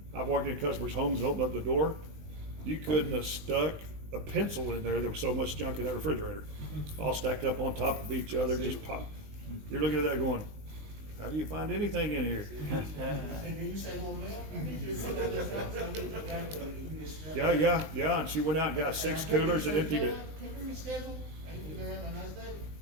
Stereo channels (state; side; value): late; left; 20 ms